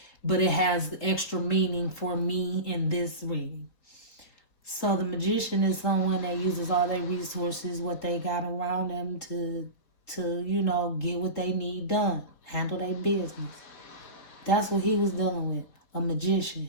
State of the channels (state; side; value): late; right; 4.0 ms